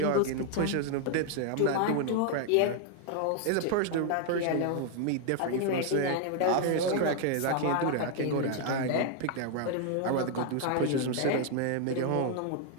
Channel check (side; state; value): both; different; correlation 0.00